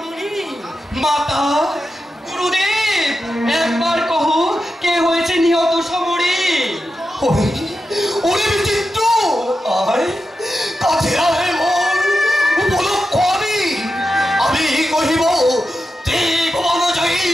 মাতা, গুরুদেব, একবার কহ কে হয়েছে নিহত সমরে? ওরে বিচিত্র, আয় কাছে আয় মোর উপলক্ষ। আমি কহিব ত্রিভুবন জয়ী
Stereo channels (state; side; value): normal; both; correlation 0.90